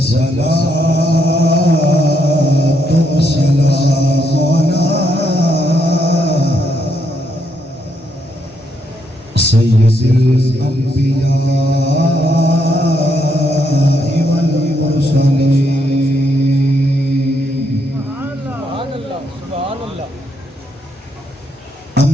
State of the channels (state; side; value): normal; both; correlation 0.76